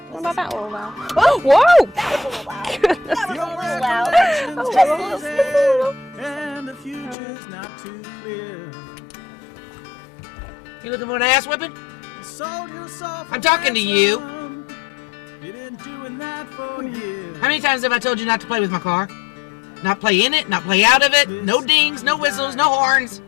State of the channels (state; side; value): drops out; right; at 7.2 s